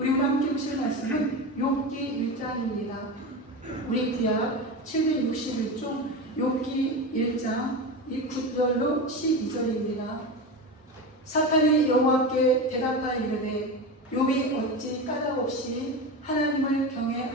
우리 함께 보실 말씀은 욥기 1장입니다. 우리 구약 761쪽 욥기 1장 9절로 12절입니다. 사탄이 여호와께 대답하여 이르되 욥이 어찌 까닭없이 하나님을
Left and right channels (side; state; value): both; normal; correlation 0.23